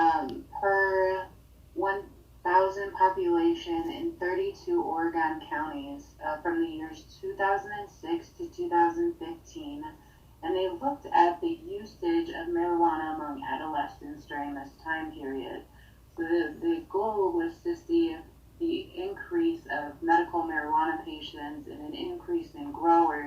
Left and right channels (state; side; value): identical; both; correlation 1.00